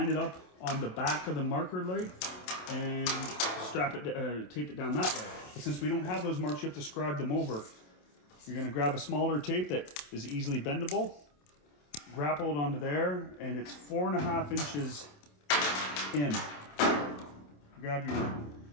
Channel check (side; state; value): right; late; 27 ms